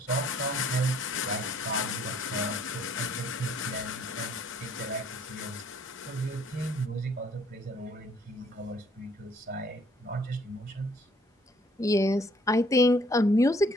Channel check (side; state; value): both; normal; correlation 0.62